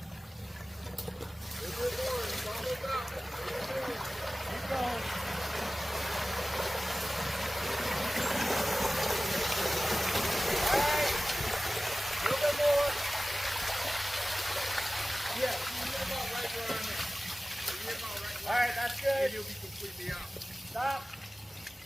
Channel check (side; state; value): both; normal; correlation 0.97